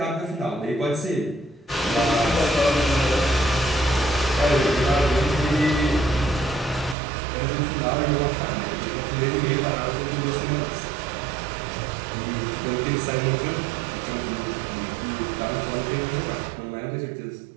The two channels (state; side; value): drops out; left; at 7.0 s